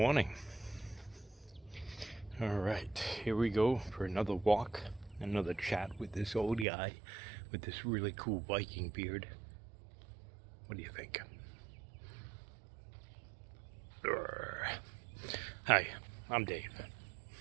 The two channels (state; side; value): drops out; left; at 6.7 s